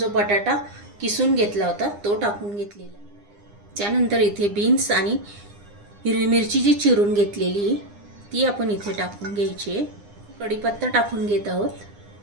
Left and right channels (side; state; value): left; late; 9.8 ms